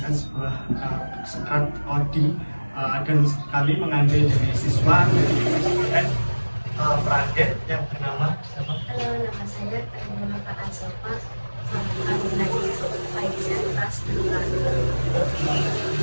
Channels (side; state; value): both; inverted; correlation -1.00